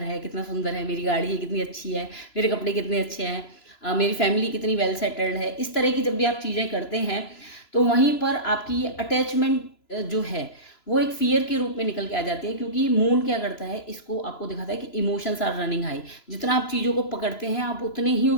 है कितना सुंदर है, मेरी गाड़ी है कितनी अच्छी है, मेरे कपड़े कितने अच्छे हैं, मेरी फैमिली कितनी वेल सेटल्ड है, इस तरह की जब भी आप चीज़ें करते हैं तो वहीं पर आपकी ये अटैचमेंट जो है वो एक फियर के रूप में निकल के आ जाती है। क्योंकि मून क्या करता है, इसको आपको दिखाता है कि इमोशंस आर रनिंग हाई। जितना आप चीज़ों को पकड़ते हैं आप उतने ही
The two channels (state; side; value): late; right; 3.0 ms